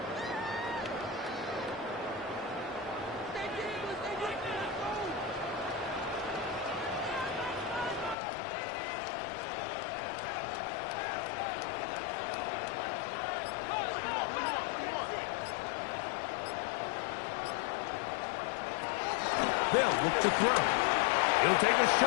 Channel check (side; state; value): right; drops out; at 8.2 s